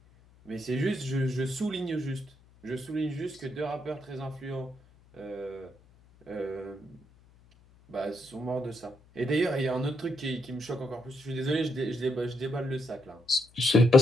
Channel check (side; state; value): left; noise; hum, 27 dB below the sound